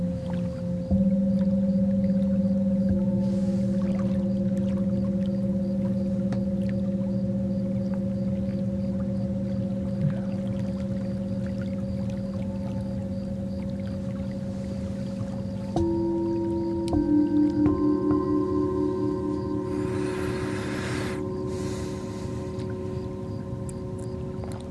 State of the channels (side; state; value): both; identical; correlation 1.00